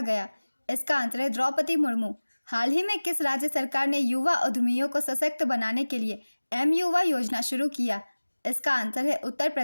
गया? इसका आंसर है द्रौपदी मुर्मू। हाल ही में किस राज्य सरकार ने युवा उद्यमियों को सशक्त बनाने के लिए M-युवा योजना शुरू किया? इसका आंसर है उत्तर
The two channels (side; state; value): both; inverted; correlation -1.00